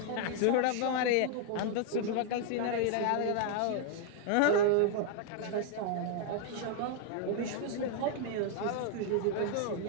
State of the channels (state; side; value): different; both; correlation 0.00